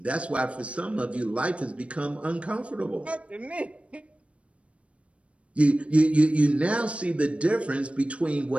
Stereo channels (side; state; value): left; late; 0.062 ms